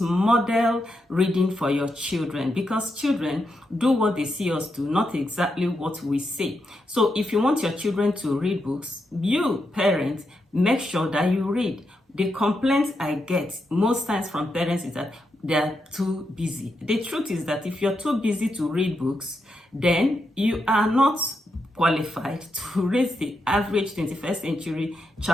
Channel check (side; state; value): both; normal; correlation 0.84